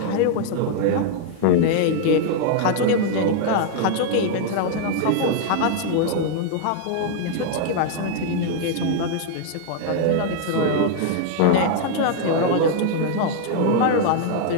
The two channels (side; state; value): both; different; correlation 0.00